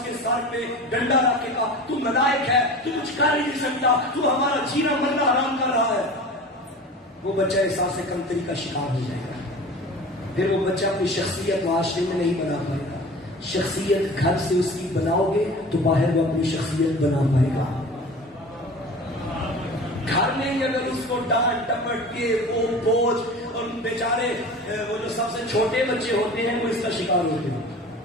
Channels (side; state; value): both; normal; correlation 0.37